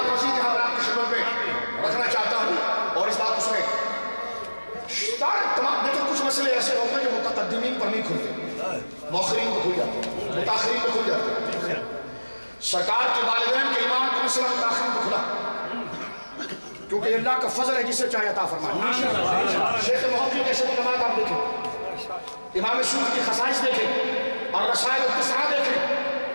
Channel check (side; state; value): both; inverted; correlation -1.00